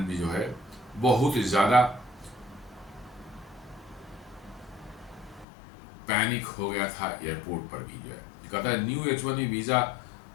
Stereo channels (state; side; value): drops out; right; at 5.5 s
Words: भी जो है बहुत ज़्यादा पैनिक हो गया था एयरपोर्ट पर भी जो है। कहता है new H1B visa